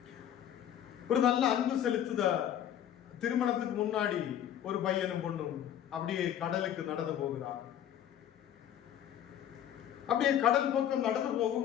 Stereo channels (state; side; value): quieter; right; 10.4 dB